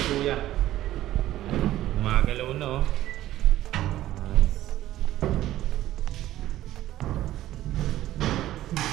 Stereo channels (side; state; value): left; quieter; 14.2 dB